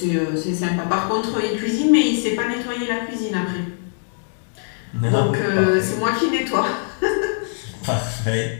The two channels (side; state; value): right; silent; 64 dB below the other